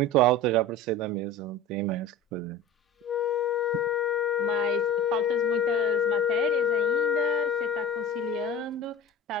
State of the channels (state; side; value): normal; both; correlation 0.36